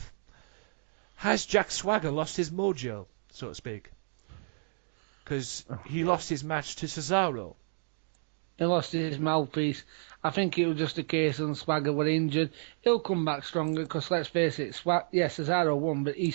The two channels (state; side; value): silent; left; digital silence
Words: has Jack Swagger lost his mojo, so to speak? Because he lost his match to Cesaro. He lost his mouthpiece. I think it was just a case of Swagger were injured. He'll come back stronger because, let's face it, Cesaro won, but